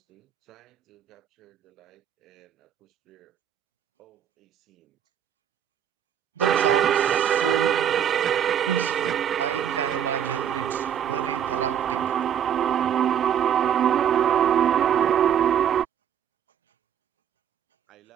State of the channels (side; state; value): left; quieter; 9.2 dB